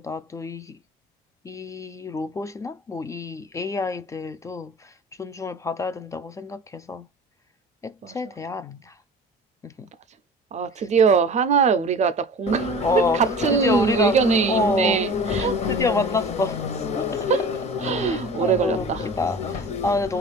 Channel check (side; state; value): both; normal; correlation 0.39